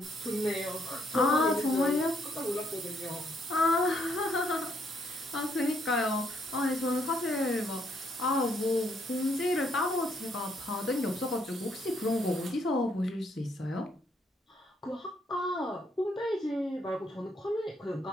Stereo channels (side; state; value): both; normal; correlation 0.72